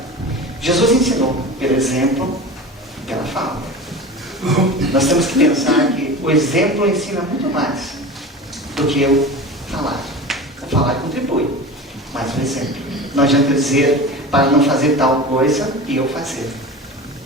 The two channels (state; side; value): normal; both; correlation 0.33